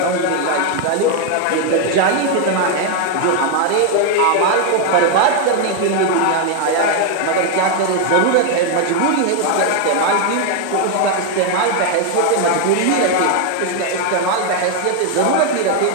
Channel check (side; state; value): both; different; correlation 0.01